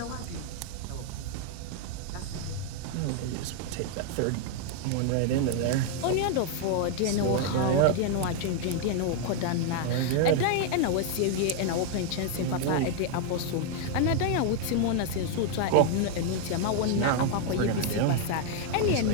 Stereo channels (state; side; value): different; both; correlation 0.00